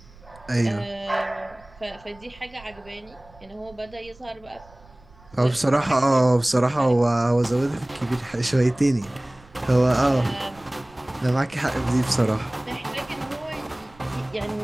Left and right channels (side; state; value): right; noise; rumble, 25 dB below the sound